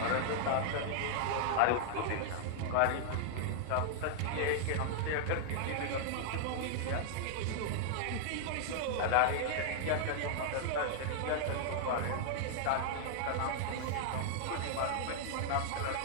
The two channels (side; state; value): both; different; correlation -0.01